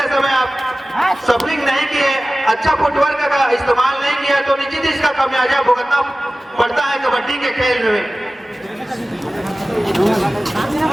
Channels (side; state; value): both; normal; correlation 0.97